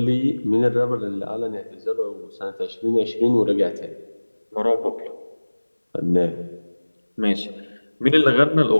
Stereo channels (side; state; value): both; inverted; correlation -1.00